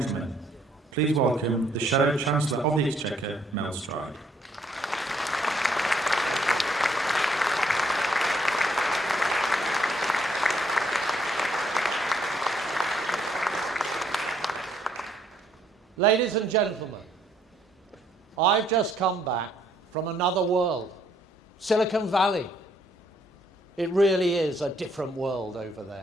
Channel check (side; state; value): both; normal; correlation 0.68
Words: please welcome the Shadow Chancellor of the Exchequer, Mel Stride. Ladies and gentlemen, I've just come back from another world, Silicon Valley. It really is a different world over